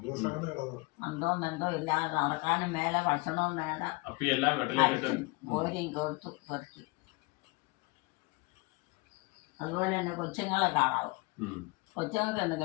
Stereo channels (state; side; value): quieter; right; 25.7 dB